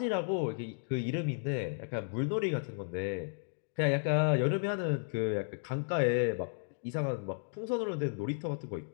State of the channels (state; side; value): silent; right; digital silence